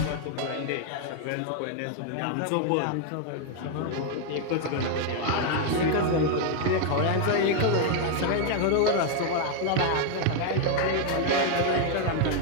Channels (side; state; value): both; different; correlation 0.00